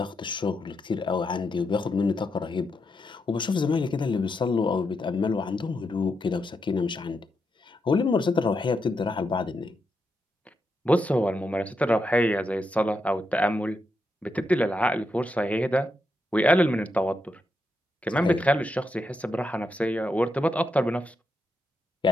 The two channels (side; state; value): both; normal; correlation 0.83